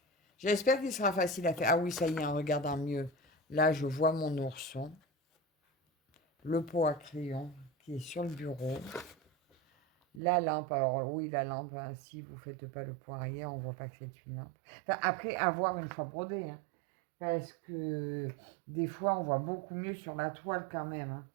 J'espère qu'il sera facile à faire. Ah oui, ça y est, en regardant mieux. Là, je vois mon ourson. Le pot à crayon qui est sur le bureau. La lampe, alors oui, la lampe, hein, si vous ne faites pas le point arrière, on ne voit pas que c'est une lampe. Enfin, après, avoir une fois brodée, hein, parce que des fois, on voit beaucoup mieux sur la toile quand même. Hein.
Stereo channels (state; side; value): drops out; left; at 10.2 s